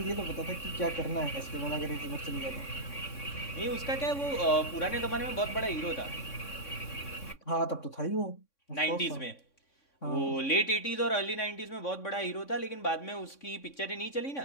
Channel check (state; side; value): late; right; 3.6 ms